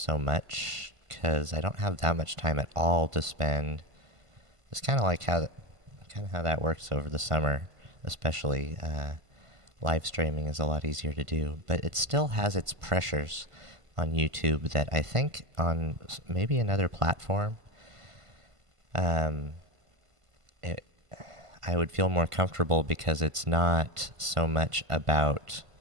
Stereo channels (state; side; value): late; left; 1.5 ms